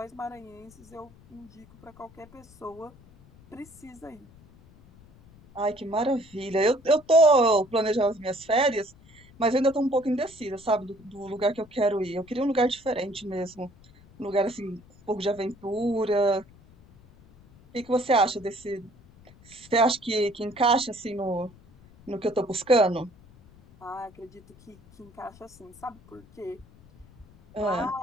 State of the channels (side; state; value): left; noise; rumble, 25 dB below the sound